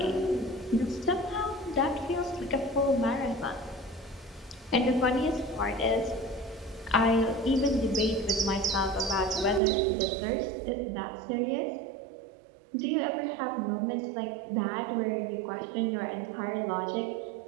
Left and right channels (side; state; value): left; drops out; at 9.6 s